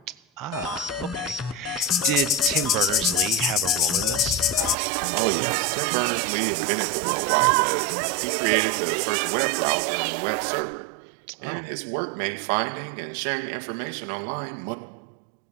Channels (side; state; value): left; drops out; at 4.8 s